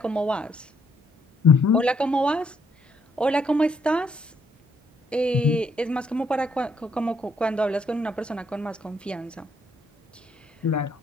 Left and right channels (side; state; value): both; normal; correlation 0.71